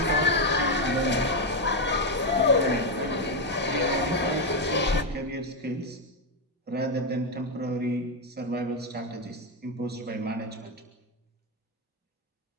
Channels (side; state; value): both; normal; correlation 0.05